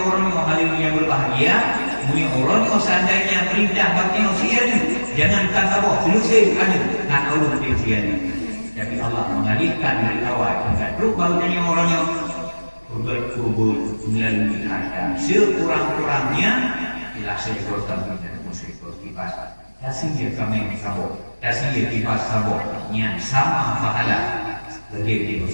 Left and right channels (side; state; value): both; inverted; correlation -1.00